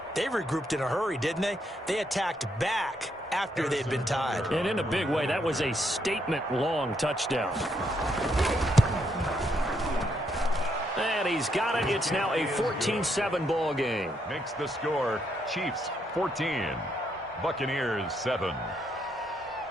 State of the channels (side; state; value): both; normal; correlation 0.76